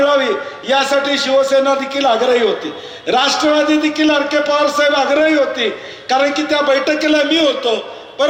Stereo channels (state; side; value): identical; both; correlation 1.00